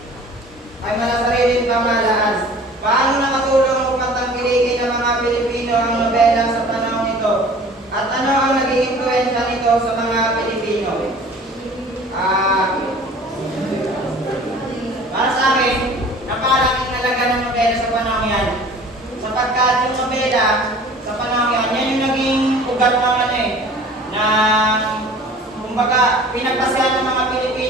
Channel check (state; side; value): normal; both; correlation 0.46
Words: Ay malasariling pamahalaan. Paano nakatulong upang tangkilikin ng mga Pilipino ang nobela sa panahon ito? At ano ang naging impluwensya nito sa mga Pilipino? Para sa akin, napakalaking halaga ng nobela sa panahon yan. Sapagkat yung nobela sa panahon yan, yan yung naging ugat ng kumbaga, pinagpasyahan ng mga